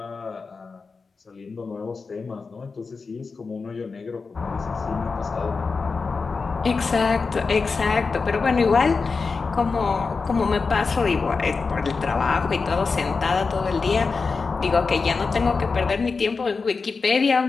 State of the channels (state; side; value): quieter; right; 4.6 dB